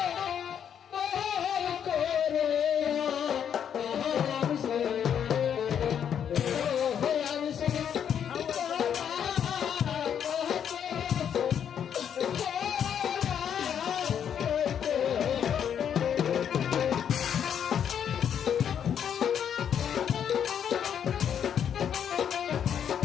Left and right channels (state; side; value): quieter; right; 8.6 dB